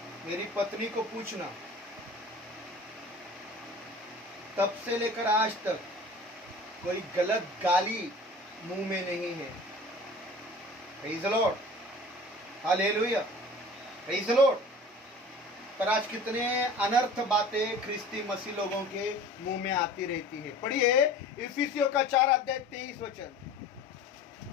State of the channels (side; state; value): both; normal; correlation 0.42